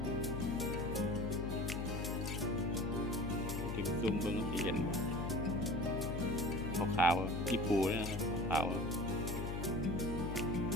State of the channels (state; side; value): noise; left; hum, 3 dB below the sound